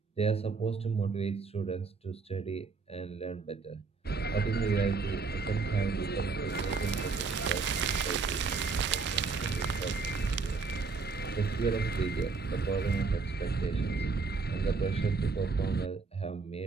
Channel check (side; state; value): left; quieter; 4.6 dB